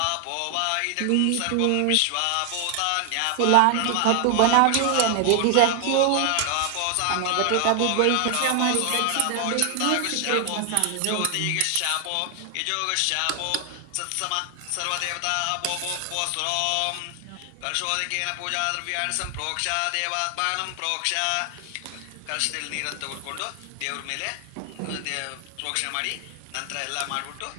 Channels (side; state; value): both; different; correlation 0.00